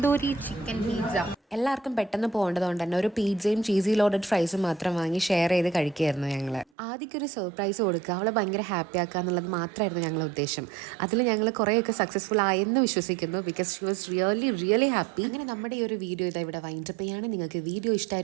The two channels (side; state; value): left; drops out; at 6.7 s